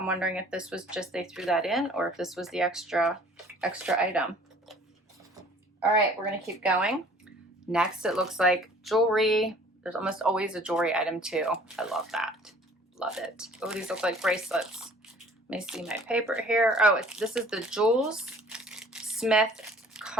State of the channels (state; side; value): normal; both; correlation 0.52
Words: wondering if this was just they threw that in, or if this was the extra item. All right, we're gonna keep going. Next, it looks like jewelry. There's almost always a jewelry item too. I love that. Love it. Oh, these look like bracelets. Let me see my paper here. Oh, this is the Jules Smith